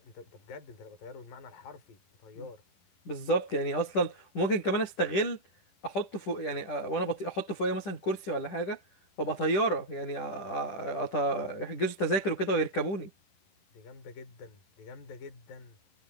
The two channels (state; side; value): late; right; 10 ms